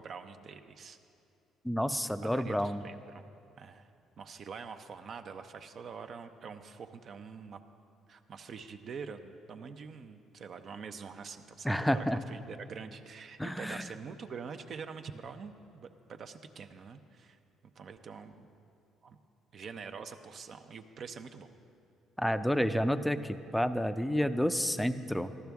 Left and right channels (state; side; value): normal; both; correlation 0.94